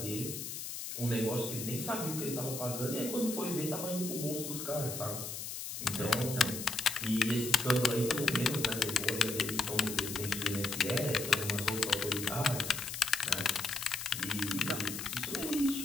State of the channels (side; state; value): left; noise; hiss, 6 dB below the sound